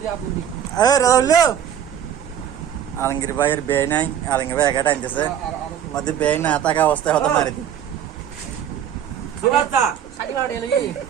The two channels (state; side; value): quieter; left; 9.5 dB